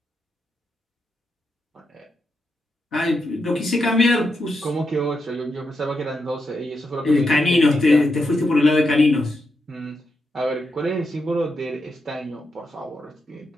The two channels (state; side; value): normal; both; correlation 0.84